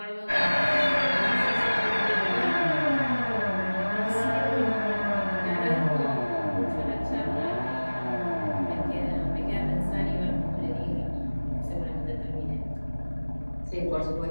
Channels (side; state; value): both; inverted; correlation -1.00